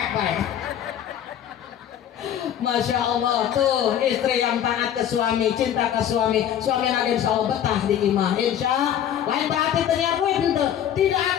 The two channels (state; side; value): quieter; right; 10.1 dB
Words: bae. Masya Allah tuh istri yang taat ke suami, cinta ke suami lagi insya Allah betah di imah insya lain berarti ternyata tidak